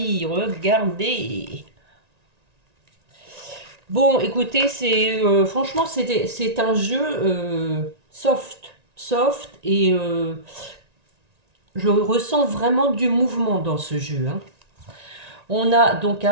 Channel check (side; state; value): left; late; 1.9 ms